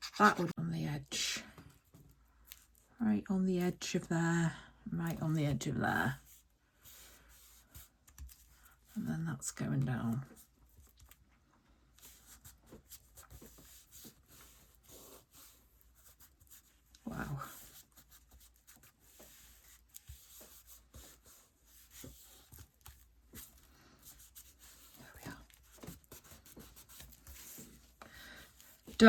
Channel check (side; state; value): both; identical; correlation 1.00